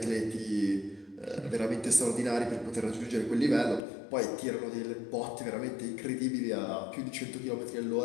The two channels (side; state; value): right; drops out; at 3.8 s